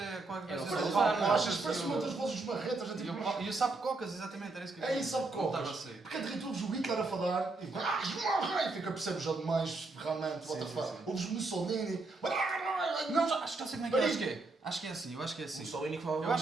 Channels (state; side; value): quieter; left; 3.4 dB